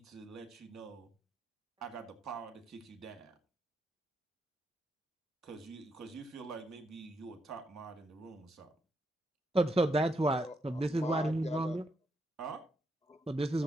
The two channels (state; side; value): normal; both; correlation 0.80